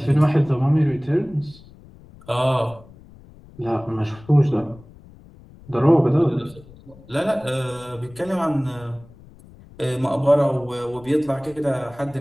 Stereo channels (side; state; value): left; noise; rumble, 23 dB below the sound